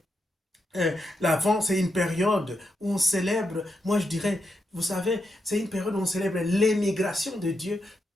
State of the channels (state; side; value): normal; both; correlation 0.83